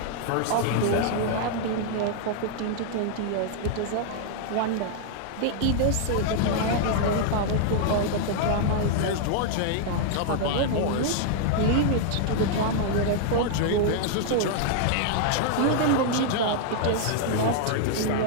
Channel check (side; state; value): both; different; correlation -0.01